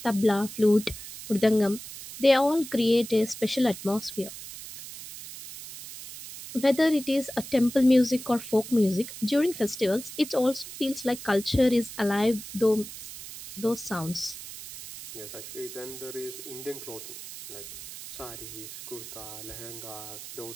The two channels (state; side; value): noise; right; hiss, 12 dB below the sound